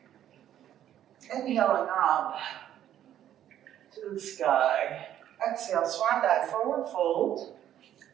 Inhaling up to the sky. Exhale, swan dive, forward fold.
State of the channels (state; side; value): quieter; left; 11.2 dB